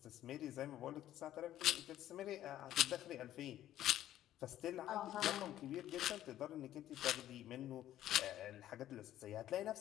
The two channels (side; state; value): right; quieter; 12.7 dB